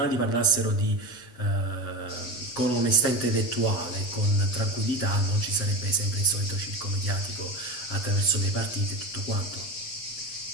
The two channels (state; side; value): late; right; 8.1 ms